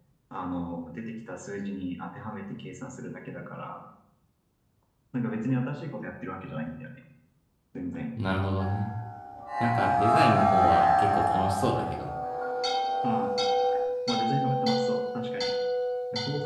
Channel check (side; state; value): both; identical; correlation 1.00